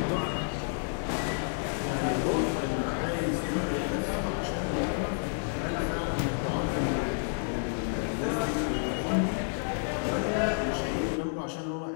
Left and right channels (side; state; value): right; silent; digital silence